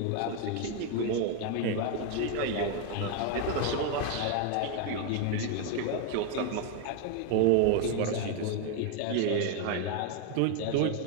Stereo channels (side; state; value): both; different; correlation 0.01